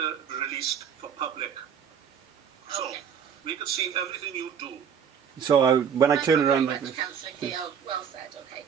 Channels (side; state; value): left; quieter; 7.6 dB